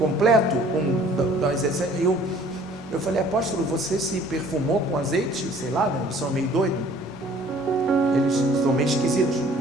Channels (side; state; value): both; normal; correlation 0.54